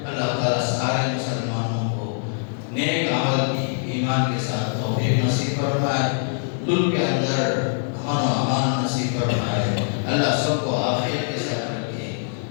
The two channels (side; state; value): right; silent; 63 dB below the other